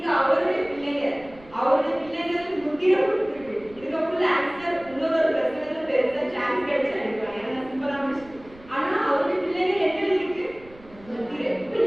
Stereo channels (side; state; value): right; noise; rumble, 23 dB below the sound